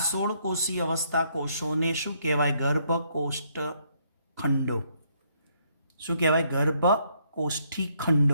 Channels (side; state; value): both; inverted; correlation -0.70